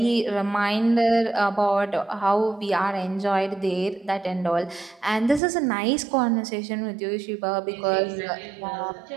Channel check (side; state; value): left; drops out; at 5.4 s